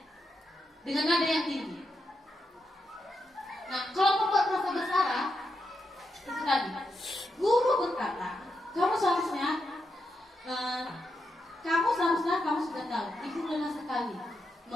dengan nada yang tinggi. Nah, kalau pembuat rasa bersalah, itu tadi guru berkata, kamu seharusnya kamu sudah tahu, ibu lelah sekali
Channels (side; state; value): both; normal; correlation 0.84